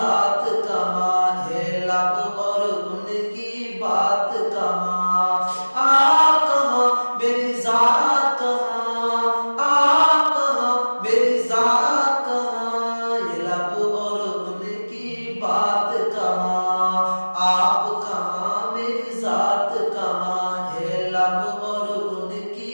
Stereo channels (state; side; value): inverted; both; correlation -1.00